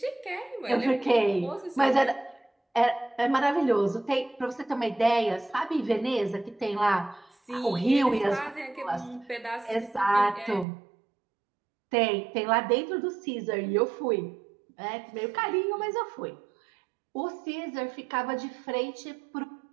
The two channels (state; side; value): drops out; left; at 10.7 s